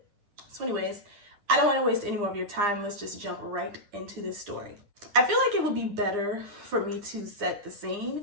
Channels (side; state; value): left; late; 9.9 ms